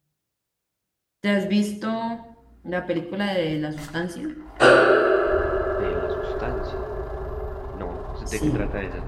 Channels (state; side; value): identical; both; correlation 1.00